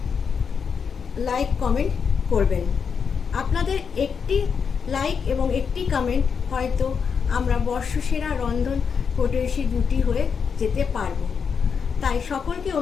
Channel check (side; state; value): right; quieter; 6.3 dB